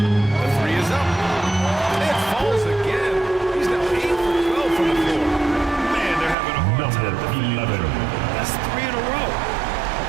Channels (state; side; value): drops out; left; at 6.4 s